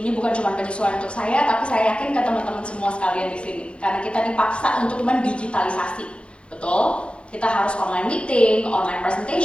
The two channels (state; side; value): late; right; 0.058 ms